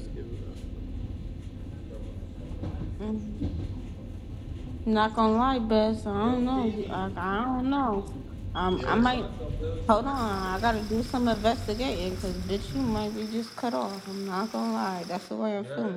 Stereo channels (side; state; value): both; identical; correlation 1.00